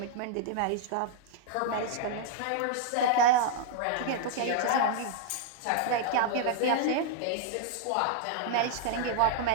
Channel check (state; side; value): different; both; correlation -0.01